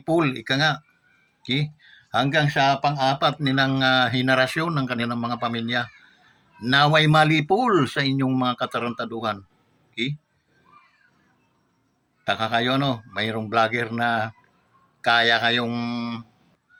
ika nga. Okay? Hanggang sa pang-apat nilang henerasyon ng kanilang mga pamilya. Naway malipol sa inyong mga katarantaduhan. Okay? Taka kayo, no? Mayroong vlogger na kaya kayong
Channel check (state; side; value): identical; both; correlation 1.00